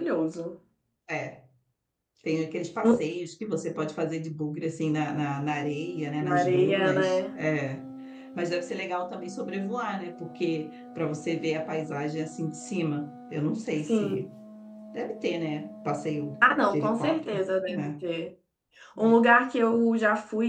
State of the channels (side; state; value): both; identical; correlation 1.00